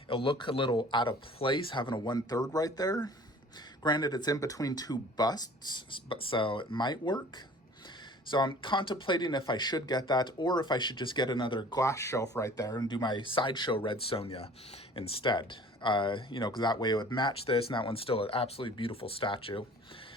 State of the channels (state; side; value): normal; both; correlation 0.48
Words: It'll look a little out of place having a 1/3 right there. Granted, it's in between two busts, so it might work. So I'm contemplating if I should get that or if I should just get another glass shelf right there and do my sideshow red Sonja instead. Because that way it would match this, and that one's still an absolutely beautiful statue.